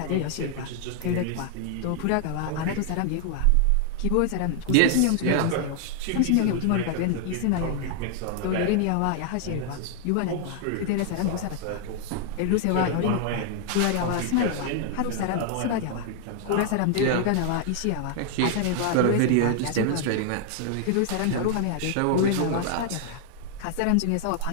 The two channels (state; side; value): different; both; correlation 0.00